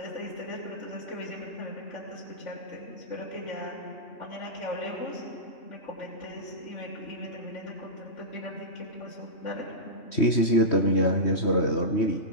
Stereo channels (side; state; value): right; late; 3.2 ms